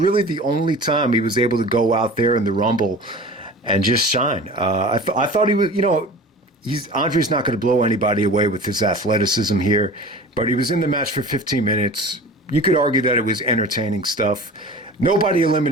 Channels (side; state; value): both; normal; correlation 0.38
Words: the only time he was able to go out there in the Rumble and just shine. I thought he was, Andre's not going to blow anybody away with his athleticism here, but he was in the match for 15 minutes. You could argue that it was entertaining stuff. Nobody